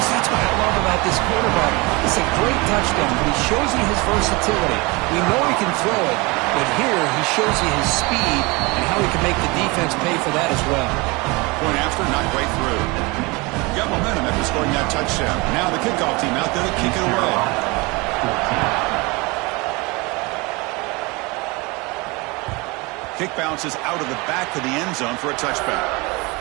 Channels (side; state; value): left; quieter; 25.7 dB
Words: what I love about this quarterback. It's a great touchdown, but he shows you his versatility. We know he can throw it, but here he shows you his speed and how he can make the defense pay for that as well. Point after, not right through. Got momentum after scoring that touchdown. Now the kickoff team out there to kick it away. Kick bounces out of the back of the end zone for a touchback.